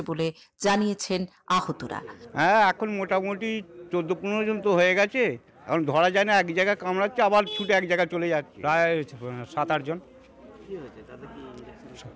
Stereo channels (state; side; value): identical; both; correlation 1.00